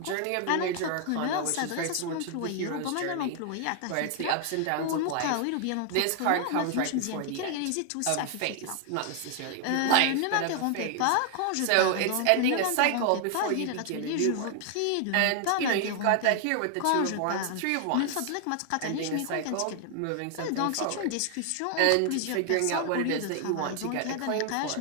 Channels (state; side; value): different; both; correlation 0.00